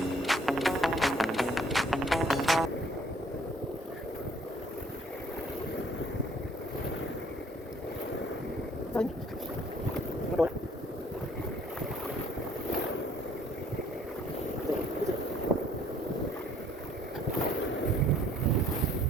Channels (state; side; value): normal; both; correlation 0.60